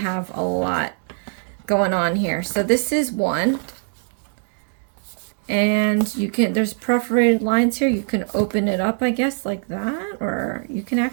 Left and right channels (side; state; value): left; silent; 64 dB below the other